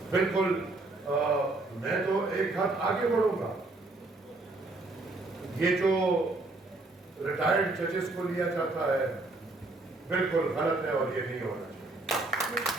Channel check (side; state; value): left; quieter; 3.1 dB